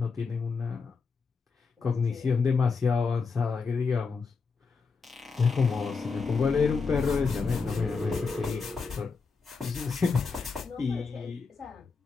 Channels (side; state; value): right; quieter; 4.8 dB